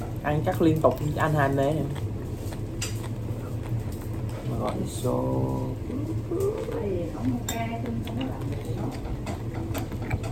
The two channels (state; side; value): identical; both; correlation 1.00